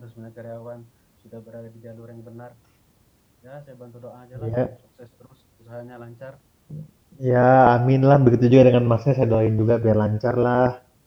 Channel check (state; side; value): identical; both; correlation 1.00